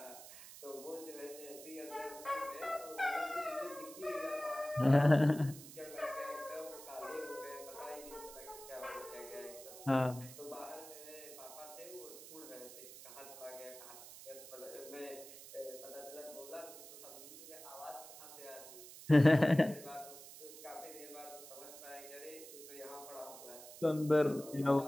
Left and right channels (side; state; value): right; noise; hiss, 15 dB below the sound